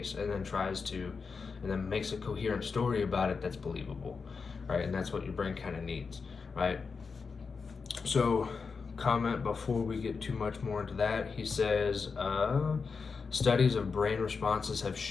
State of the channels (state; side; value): quieter; right; 5.1 dB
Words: and then makes a coherent story about it that's believable, right? And that's what your brain kind of needs, right? So comment before we get too much more into that. He says, studies of brain responses have